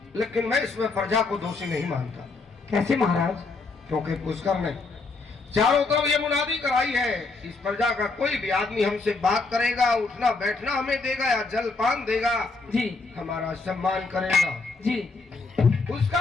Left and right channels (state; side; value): quieter; right; 3.9 dB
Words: लेकिन मैं इसमें प्रजा को दोषी नहीं मानता। कैसे महाराज? क्योंकि पुष्कर ने चारों तरफ ये मुनादी कराई है, इस प्रजा का कोई भी आदमी हमसे बात करेगा, उठना बैठना हमें देगा या जलपान देगा, जी हमारा सम्मान करेगा, जी